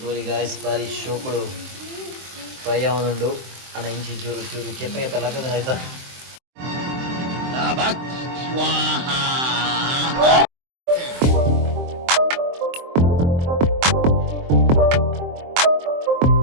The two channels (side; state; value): left; late; 23 ms